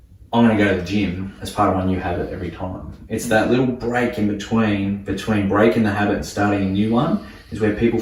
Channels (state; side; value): identical; both; correlation 1.00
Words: I'm going to go to the gym as part of my new habit every time. It's that little break in between breaking the habit and starting a new one is where people